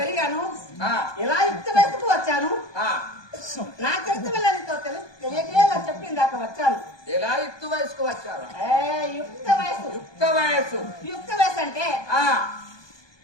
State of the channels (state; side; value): late; right; 1.2 ms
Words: ఎలా యుక్త వయసుకు వచ్చాను, నా చరిత్ర వెళ్ళనితో తెలియజేయాల చెప్పింది దాకా వచ్చాను. ఎలా యుక్త వయసుకు వచ్చారు? యుక్త వయసు. యుక్త వయసు. యుక్త వయసు అంటే